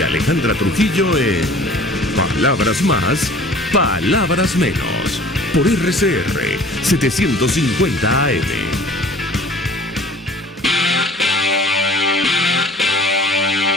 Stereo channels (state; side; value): normal; both; correlation 0.48